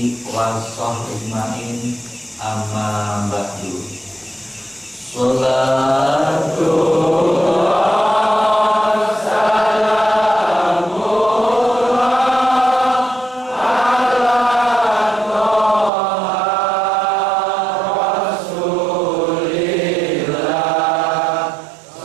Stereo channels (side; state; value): left; drops out; at 15.9 s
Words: wa sahbihi ajmain, amma ba'du. Salatullah